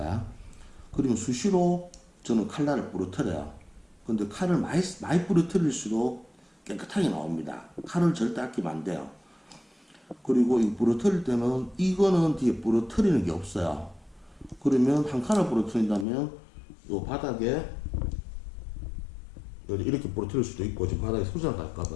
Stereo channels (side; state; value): right; drops out; at 16.1 s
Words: 그러면 수시로 저는 칼날을 부러뜨려요. 근데 칼을 많이 부러뜨릴수록 깨끗하게 나옵니다. 칼을 절대 아끼면 안 돼요. 그리고 이 부러뜨릴 때는 이거는 뒤에 부러뜨리는 게 없어요. 그러면 한 칸을 부러뜨린다면 요 바닥에 이렇게 부러뜨릴 수도 있고 지금 바닥에 소지나